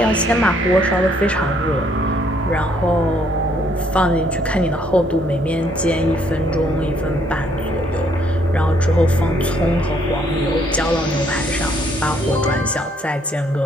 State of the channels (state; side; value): normal; both; correlation 0.67